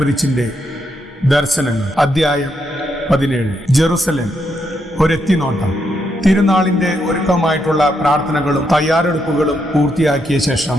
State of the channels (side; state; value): both; normal; correlation 0.80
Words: ദർശനങ്ങൾ. അധ്യായം 17. ജെറുസലേം ഒരെത്തിനോട്ടം. തിരുനാളിന്റെ ഒരുക്കമായിട്ടുള്ള പ്രാർത്ഥനകളും തയ്യാറെടുപ്പുകളും പൂർത്തിയാക്കിയ ശേഷം